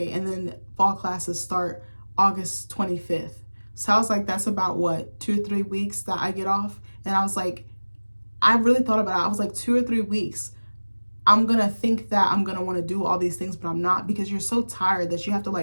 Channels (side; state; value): both; inverted; correlation -1.00